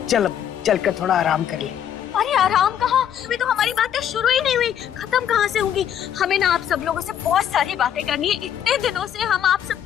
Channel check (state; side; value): quieter; right; 9.7 dB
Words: चल कर थोड़ा आराम कर ले। अरे आराम कहाँ? अभी तो हमारी बातें शुरू ही नहीं हुई, खत्म कहाँ से होंगी? हमें ना आप सब लोगों से बहुत सारी बातें करनी है। इतने दिनों से हम आप